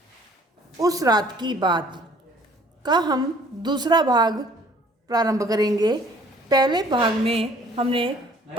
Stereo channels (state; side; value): normal; both; correlation 0.55